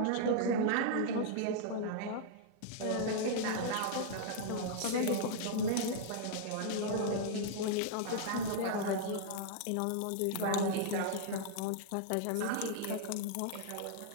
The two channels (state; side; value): different; both; correlation -0.01